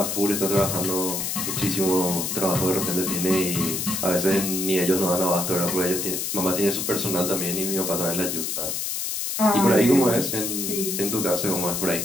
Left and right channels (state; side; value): noise; left; hiss, 2 dB below the sound